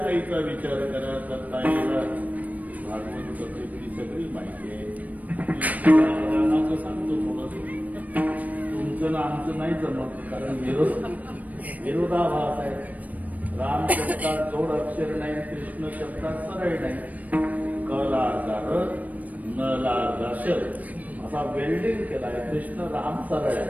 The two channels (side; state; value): left; late; 0.074 ms